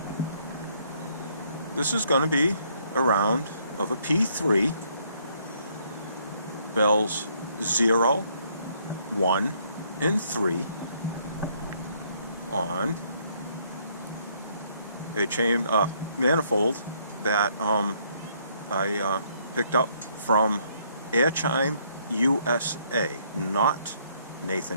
this is going to be a round of a P-3, bells 0, 1, and 3 on a chime manifold that I picked up from Chime USA, not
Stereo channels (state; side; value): inverted; both; correlation -0.68